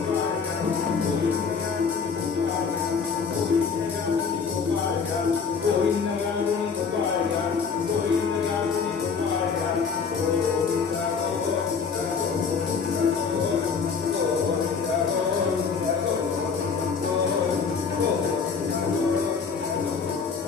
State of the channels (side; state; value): right; quieter; 5.7 dB